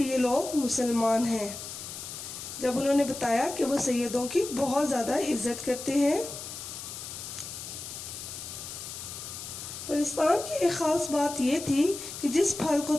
یہ لوگ مسلمان ہیں، جب انہوں نے بتایا کہ وہ سیدوں کی بہت زیادہ عزت کرتے ہیں۔ پرستان کی ایک خاص بات یہ تھی کہ جس پھل کو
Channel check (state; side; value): noise; left; hiss, 9 dB below the sound